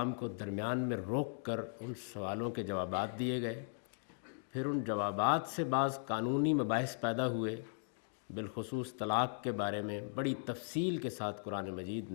کو درمیان میں روک کر ان سوالوں کے جوابات دیے گئے، پھر ان جوابات سے بعض قانونی مباحث پیدا ہوئے، بالخصوص طلاق کے بارے میں بڑی تفصیل کے ساتھ قرآن مجید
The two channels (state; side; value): silent; right; digital silence